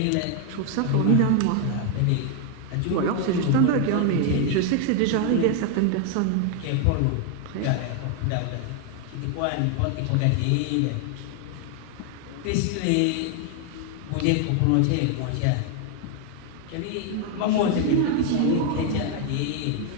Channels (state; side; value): different; both; correlation 0.01